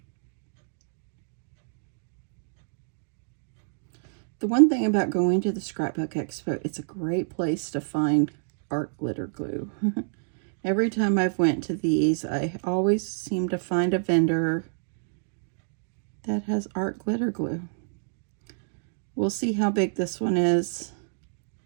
The one thing about going to the Scrapbook Expo, it's a great place to find art glitter glue. Every time I've went to these, I always seem to find a vendor that has art glitter glue. We'll see how big this one is.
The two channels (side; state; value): left; silent; digital silence